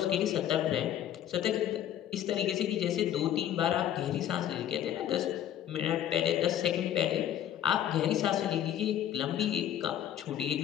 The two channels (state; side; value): quieter; right; 11.0 dB